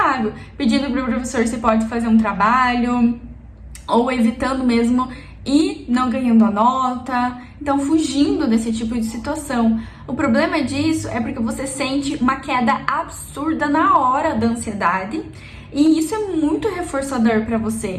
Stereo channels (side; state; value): both; identical; correlation 1.00